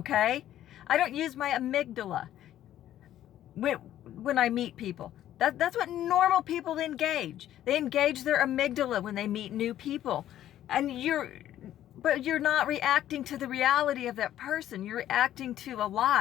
I don't use my amygdala when I meet people. That's what normal people engage. They engage their amygdala when they meet new people. And but you're not reacting to the reality of that person. You're reacting to a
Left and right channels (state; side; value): quieter; right; 12.2 dB